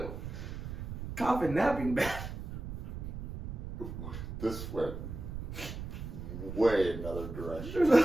Coffin napping bed. This went way another direction. There's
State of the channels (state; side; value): noise; right; rumble, 7 dB below the sound